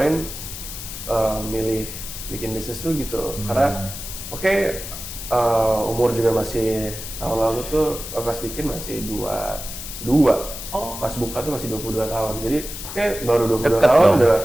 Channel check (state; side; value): noise; left; hiss, 9 dB below the sound